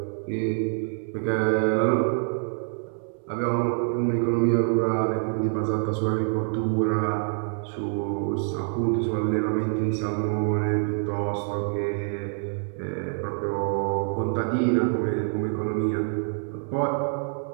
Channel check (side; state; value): left; silent; 56 dB below the other